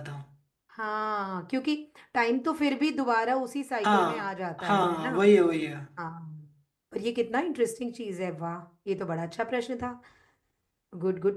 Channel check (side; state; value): both; identical; correlation 1.00